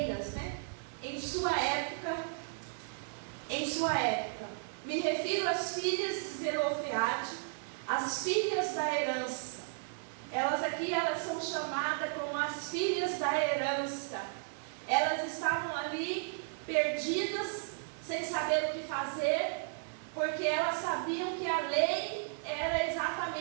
né? Em sua época. Me refiro às filhas de Zelofeade, as filhas da herança. Elas são chamadas como as filhas da herança. Elas estavam ali perdidas, sem saber o que fazer, porque elas sabiam que a lei era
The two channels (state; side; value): silent; left; 55 dB below the other